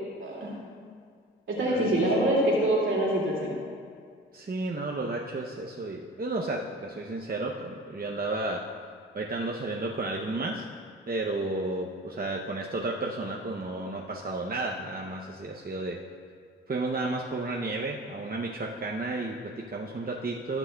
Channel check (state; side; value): normal; both; correlation 0.38